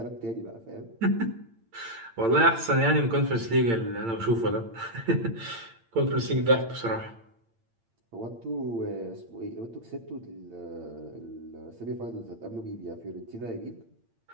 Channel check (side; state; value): left; late; 8.8 ms